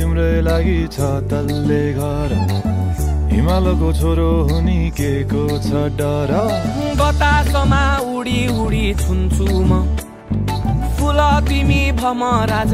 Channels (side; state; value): both; identical; correlation 1.00